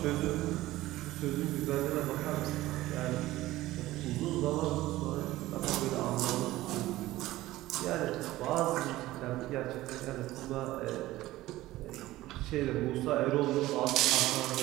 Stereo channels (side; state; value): left; quieter; 16.7 dB